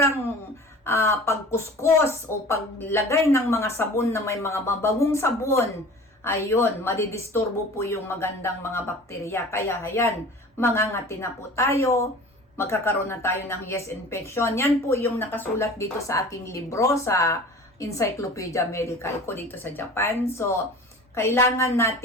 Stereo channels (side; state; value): both; normal; correlation 0.41